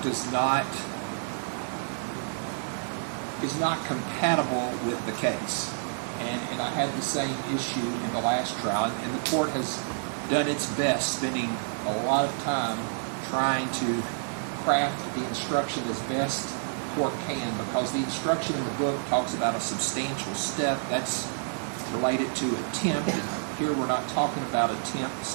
is not compatible with the case. And I had the same issue in the last trial, and the court has done its best, spending a lot of time trying to craft the instruction as best the court can, because the instruction in the book talks about a substantial step that's related to attempt, and here we're not talking about attempt,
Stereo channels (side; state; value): left; silent; 56 dB below the other